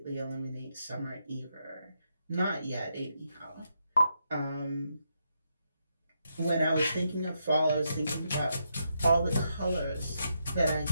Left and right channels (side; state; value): both; inverted; correlation -0.81